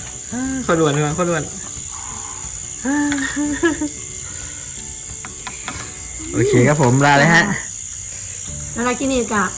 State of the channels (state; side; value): identical; both; correlation 1.00